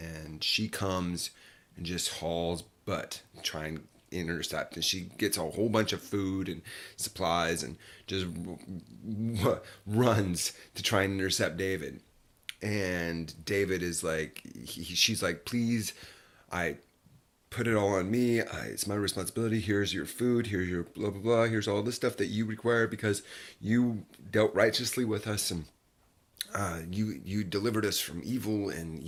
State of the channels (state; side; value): identical; both; correlation 1.00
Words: she comes and just hauls butt, trying to intercept, and she gets a whole bunch of food and supplies and just runs to try and intercept David. And David is like, she's like, please, I put it all on me. It's my responsibility. Here's your food. Here's your blah, blah, blah. Here's all the stuff that you require because you dealt righteously with us, and you delivered us from evil, and